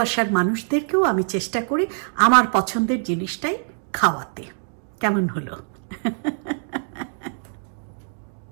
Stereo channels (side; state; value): left; silent; 57 dB below the other